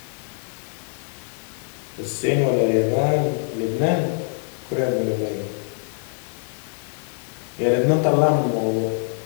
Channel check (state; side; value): silent; right; 63 dB below the other